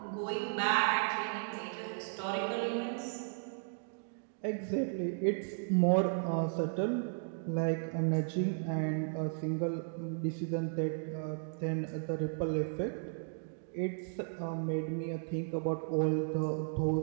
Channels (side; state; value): left; silent; digital silence